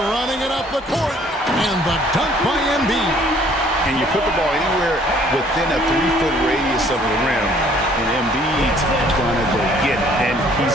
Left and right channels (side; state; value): both; normal; correlation 0.59